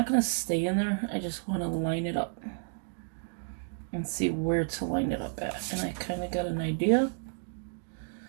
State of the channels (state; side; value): silent; left; 57 dB below the other